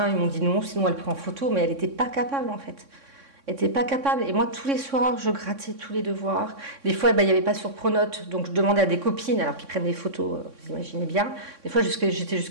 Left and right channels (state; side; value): late; left; 3.6 ms